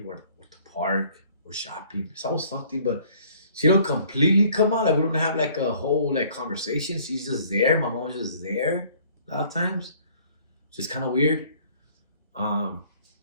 we're at the park, we're shopping. It's always something, but she don't completely come out. Like we don't have like a whole like conversation. She's just there. My mom's just there a lot of times. It's just kind of weird. Um,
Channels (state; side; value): inverted; both; correlation -0.57